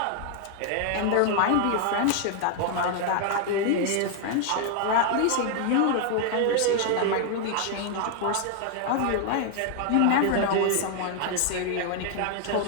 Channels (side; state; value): both; different; correlation 0.00